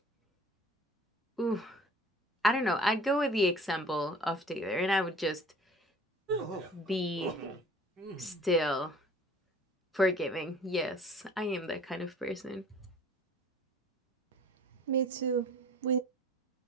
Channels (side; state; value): both; normal; correlation 0.49